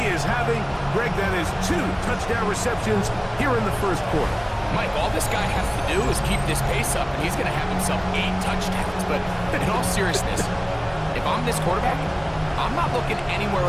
is having. Greg, that is 2 touchdown receptions here in the 1st quarter. Mike, all this guy has to do is keep this pace up, and he's going to have himself 8 touchdowns. But in all seriousness, if I'm this quarterback, I'm not looking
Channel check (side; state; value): both; identical; correlation 1.00